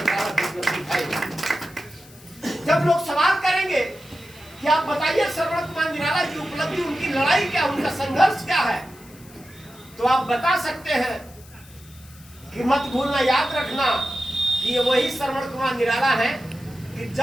की उपलब्धि है। जब लोग सवाल करेंगे कि आप बताइए श्रवण कुमार निराला की उपलब्धि, उनकी लड़ाई क्या, उनका संघर्ष क्या है, तो आप बता सकते हैं कि मत भूलना, याद रखना कि ये वही श्रवण कुमार निराला है कि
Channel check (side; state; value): left; noise; hiss, 23 dB below the sound